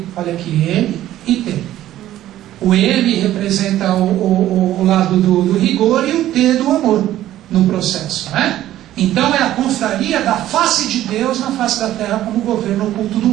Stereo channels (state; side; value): quieter; left; 13.4 dB